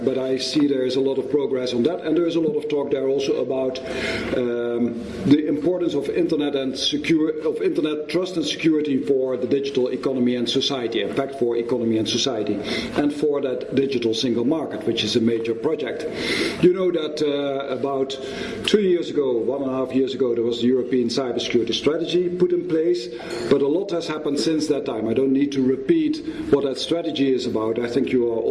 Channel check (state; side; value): identical; both; correlation 1.00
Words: I see there is a lot of progress on that, and there is a lot of talk there also about the importance of Internet trust and security for the digital economy and society, in fact for economy and society, and for that digital single market, which is a major project. You know that about 2 years ago, 1.5 years ago, there was the European Cybersecurity strategy put in place, but a lot has happened since that time. I don't need to repeat what that strategy is about. I think you are